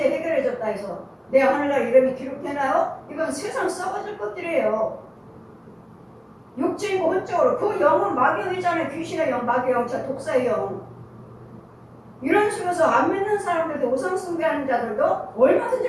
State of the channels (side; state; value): both; identical; correlation 1.00